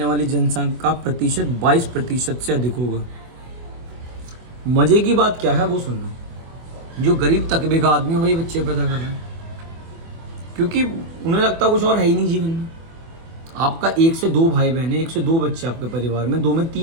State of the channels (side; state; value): left; late; 24 ms